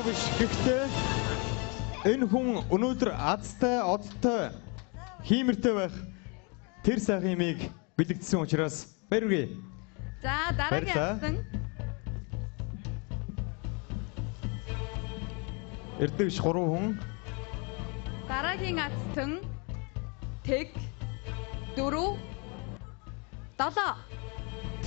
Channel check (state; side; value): quieter; right; 33.0 dB